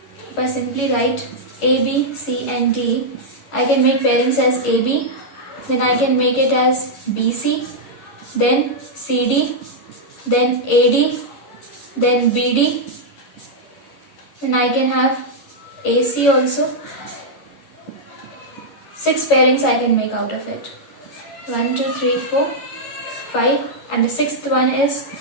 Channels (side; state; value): right; late; 11 ms